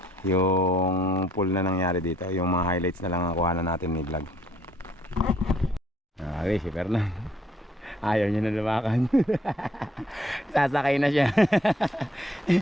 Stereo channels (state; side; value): normal; both; correlation 0.65